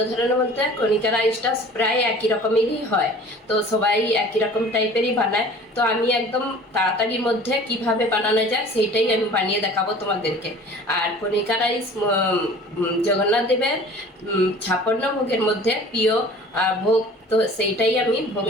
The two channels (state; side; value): normal; both; correlation 0.45